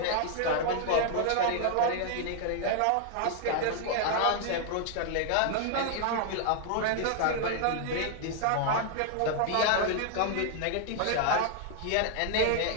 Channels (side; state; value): both; different; correlation 0.00